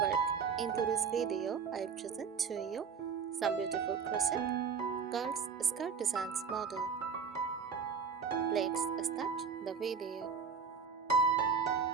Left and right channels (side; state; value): left; quieter; 5.9 dB